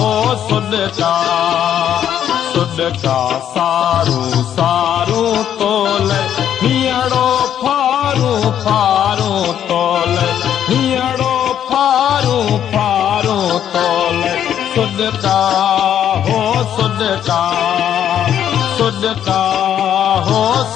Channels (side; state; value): right; quieter; 9.9 dB